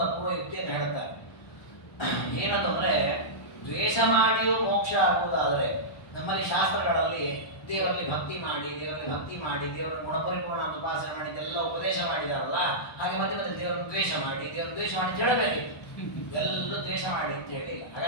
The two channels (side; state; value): right; late; 1.2 ms